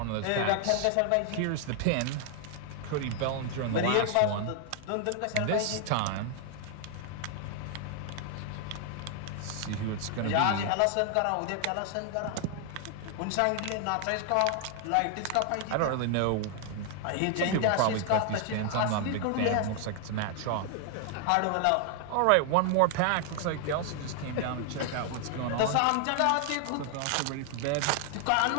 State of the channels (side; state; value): both; different; correlation 0.00